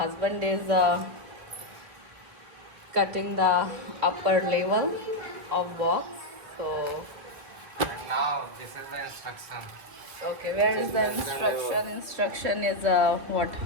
is cutting the upper level of box. So Now this is the instruction. okay, where is the instruction? Instruction is what?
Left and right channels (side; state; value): left; late; 3.2 ms